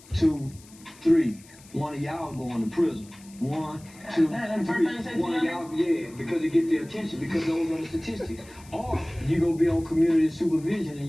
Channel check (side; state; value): left; noise; hiss, 23 dB below the sound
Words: 2, 3. One of y'all going to prison. 1, 2, 3. One of y'all, yeah, because it get their attention, because those are the statistics. Or you gonna be on community supervision in